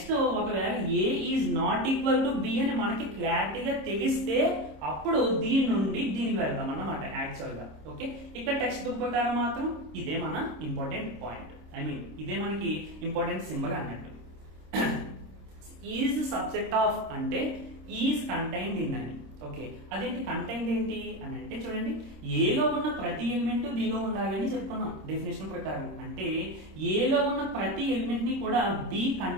ఒకవేళ A is not equal to B అని మనకి క్లారిటీగా తెలిస్తే అప్పుడు దీని నుండి దీనికి వెళ్తాం అన్నమాట యాక్చువల్ గా. ఓకే, ఇక్కడ టెక్స్ట్ బుక్ ప్రకారం మాత్రం ఇదే మన ఇంపార్టెంట్ పాయింట్. ఇదే మనకి ఇంపార్టెంట్ సింబల్ అన్నట్టు. ఈజ్ సబ్సెట్ ఆఫ్ అంటే ఈజ్ కంటైన్డ్ ఇన్ అని. ఓకే, అదేంటి కంటైన్డ్ ఏంటి అని అంటే చూడండి, ఏలో ఉన్న ప్రతి ఎలిమెంట్ బిలో ఉండాలి అని చెప్పుకున్నాం డెఫినేషన్ ప్రకారం. అంటే ఏలో ఉన్న ప్రతి ఎలిమెంట్ ని కూడా బి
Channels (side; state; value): left; late; 26 ms